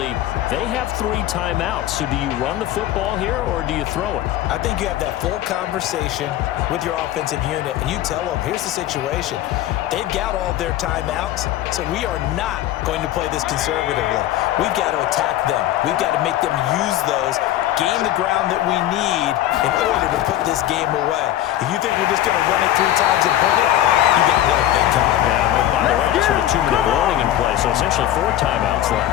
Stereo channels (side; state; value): right; quieter; 13.1 dB